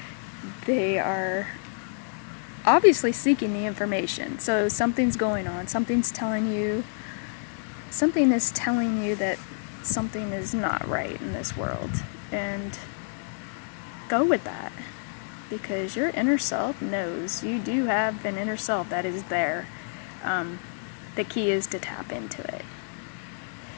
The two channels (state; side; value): silent; right; 59 dB below the other